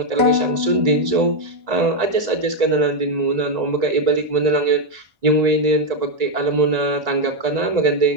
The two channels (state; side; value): late; left; 1.9 ms